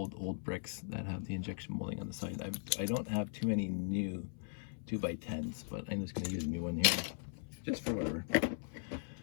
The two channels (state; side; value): silent; right; 52 dB below the other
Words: bricks that have the injection molding on the side. I don't have too many new 2x10s, but I'm just going to use a new one here, just for whatever.